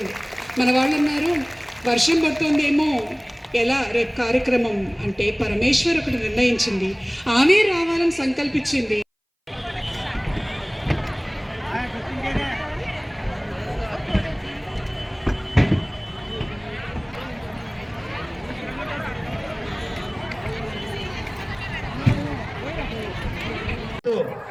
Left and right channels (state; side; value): identical; both; correlation 1.00